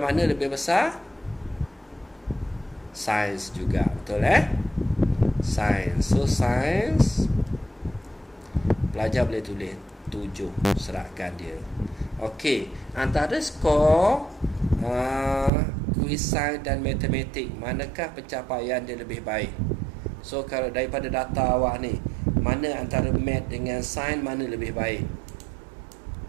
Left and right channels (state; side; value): drops out; left; at 15.5 s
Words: mana lebih besar? Sains juga. Betul Sains. So, sains pelajar boleh tulis 7 serakan dia. Okey, antara skor kuis sains dan matematik, manakah pencapaian dia lebih baik? So, kalau daripada data awak ni, mana antara mat dengan sains mana lebih baik?